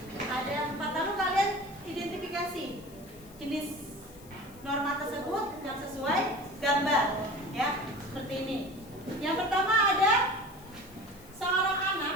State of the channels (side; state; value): left; noise; hiss, 23 dB below the sound